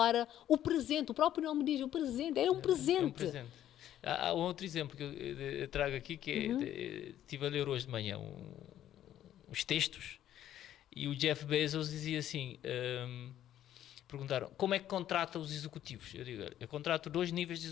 o presente. O próprio nome diz, o presente, é um presente. É um presente. Há um outro exemplo que eu trago aqui, que estive a ler hoje de manhã uns textos, e o Jeff Bezos dizia assim, perguntaram, como é que contrata os executivos? Eu digo, eu contrato 2 níveis de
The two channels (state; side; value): quieter; right; 11.7 dB